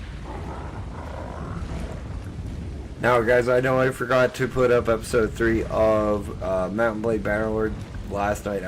Now, guys, I know I forgot to put up episode 3 of Mountain Blade Bannerlord last night.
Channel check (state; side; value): identical; both; correlation 1.00